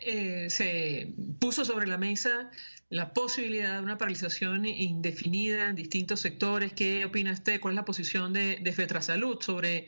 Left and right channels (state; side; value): inverted; both; correlation -1.00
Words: se puso sobre la mesa la posibilidad de una paralización indefinida en distintos sectores. ¿Qué opina usted? ¿Cuál es la posición de FETRASalud sobre